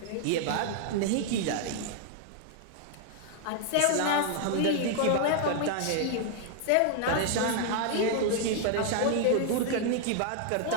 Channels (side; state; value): both; different; correlation 0.00